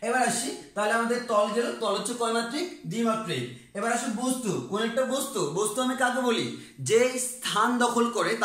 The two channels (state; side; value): identical; both; correlation 1.00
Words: এবার আসি, তাহলে আমাদের তল গেল, তল হচ্ছে কয়মাত্রিক? দ্বিমাত্রিক। এবার আসি বস্তু, কোন একটা বস্তু, বস্তু আমি কাকে বলি? যে স্থান দখল করে